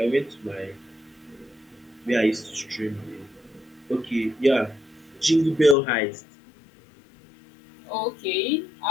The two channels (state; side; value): drops out; right; at 5.8 s